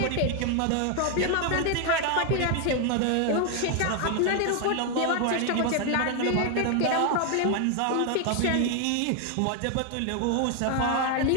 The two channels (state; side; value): different; both; correlation 0.00